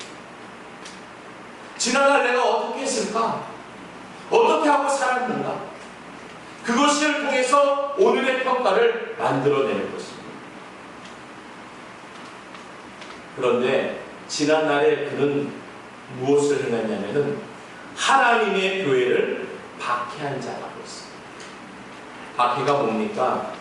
지난날 내가 어떻게 했을까? 어떻게 하고 살았는가? 그것을 통해서 오늘의 평가를 만들어내는 것입니다. 그런데 지난날에 그는 무엇을 행했냐면은 하나님의 교회를 박해한 자라고 했습니다. 박해가 뭡니까?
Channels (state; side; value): identical; both; correlation 1.00